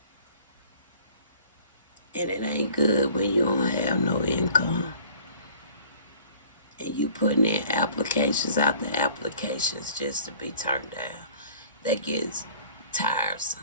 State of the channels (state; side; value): inverted; both; correlation -0.52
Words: And it ain't good when you don't have no income. And you putting in applications after applications just to be turned down. That gets tiresome.